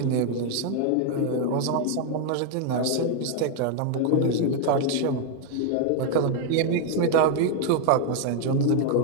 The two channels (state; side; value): different; both; correlation 0.01